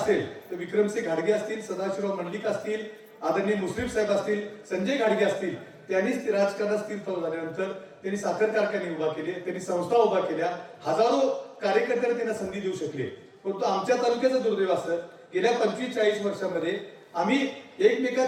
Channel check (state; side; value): identical; both; correlation 1.00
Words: तर विक्रमसिंह घाडगे असतील सदाशिवराव मंडलिक असतील आदरणीय मुश्रीफ साहेब असतील संजय घाडगे असतील त्यांनीच राजकारणात स्थिरतावर झाल्यानंतर त्यांनी साखर कारखाने उभा केले त्यांनी संस्था उभा केल्या हजारो कार्यकर्त्यांना त्यांना संधी देऊ शकले. परंतु आमच्या तालुक्याचं दुर्दैव असं गेल्या 25-40 वर्षांमध्ये आम्ही